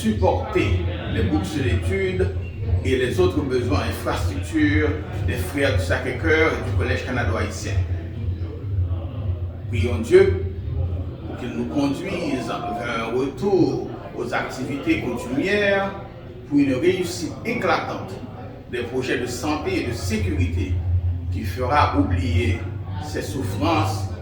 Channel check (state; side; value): identical; both; correlation 1.00